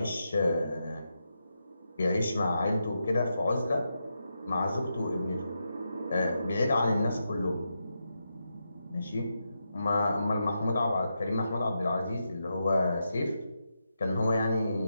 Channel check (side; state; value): both; inverted; correlation -0.86